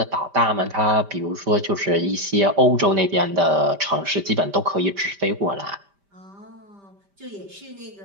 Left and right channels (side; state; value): left; late; 5.1 ms